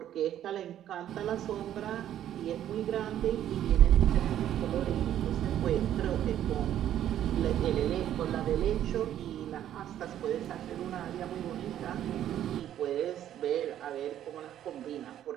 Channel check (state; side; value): quieter; left; 11.3 dB